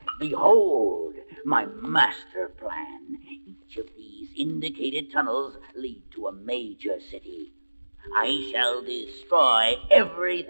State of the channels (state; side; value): inverted; both; correlation -1.00